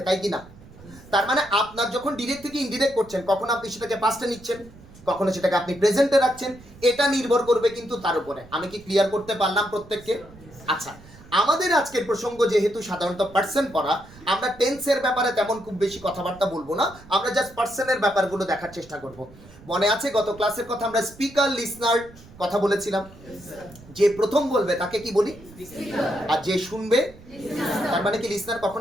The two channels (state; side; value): noise; right; rumble, 21 dB below the sound